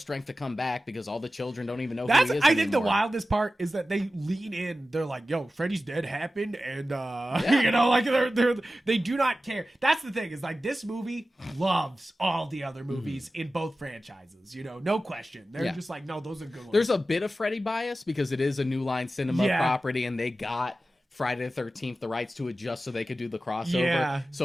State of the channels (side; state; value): both; normal; correlation 0.94